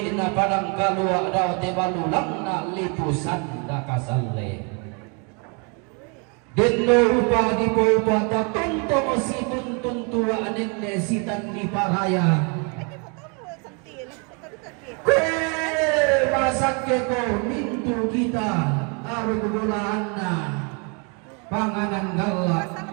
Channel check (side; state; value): left; quieter; 34.7 dB